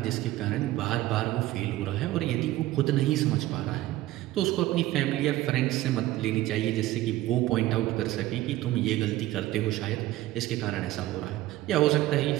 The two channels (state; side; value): quieter; left; 16.1 dB